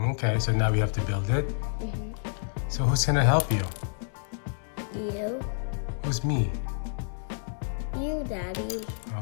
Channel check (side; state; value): right; silent; 59 dB below the other